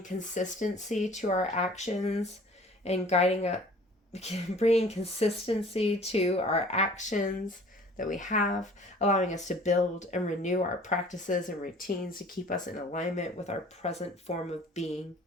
consistency to our actions and guiding us, bringing consistency to our actions that we have, allowing us to build and renew our practices and routines to keep us in alignment with our present form of being.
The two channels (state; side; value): normal; both; correlation 0.50